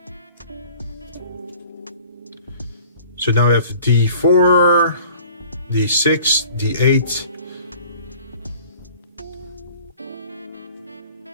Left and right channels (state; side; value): inverted; both; correlation -0.49